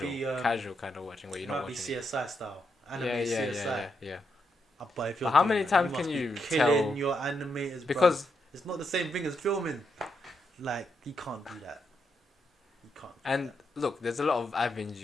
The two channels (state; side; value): normal; both; correlation 0.81